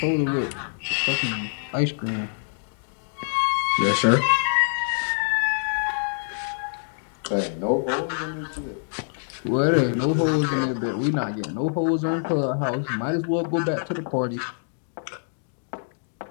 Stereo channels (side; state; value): right; silent; digital silence